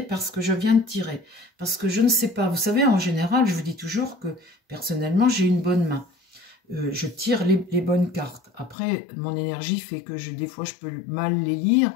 parce que je viens de tirer. Parce que je ne sais pas, vous savez, en général, je vous dis toujours que personnellement, j'ai une bonne main. Je tire les bonnes cartes. Après, mon énergie fait que des fois, je peux mal les lire.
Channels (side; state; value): right; drops out; at 8.8 s